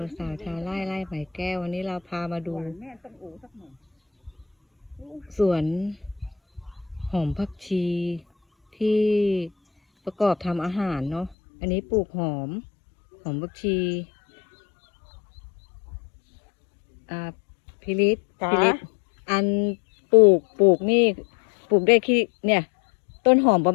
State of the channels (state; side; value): drops out; right; at 11.4 s